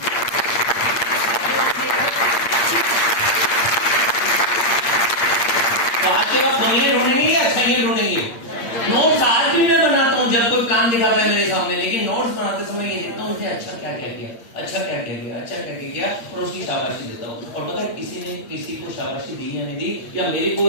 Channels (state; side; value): late; right; 8.6 ms